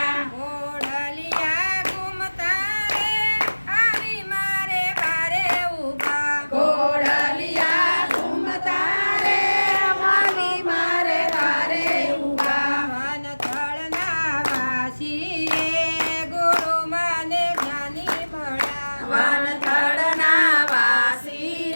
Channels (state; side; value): inverted; both; correlation -1.00